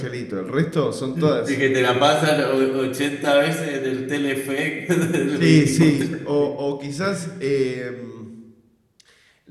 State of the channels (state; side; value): identical; both; correlation 1.00